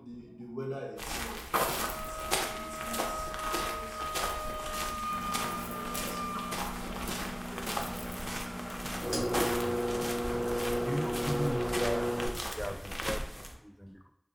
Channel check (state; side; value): identical; both; correlation 1.00